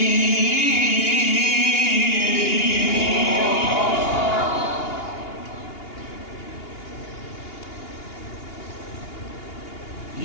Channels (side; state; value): right; late; 2.8 ms